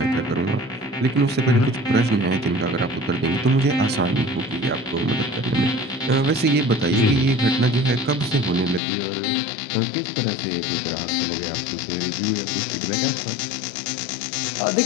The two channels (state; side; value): drops out; right; at 8.8 s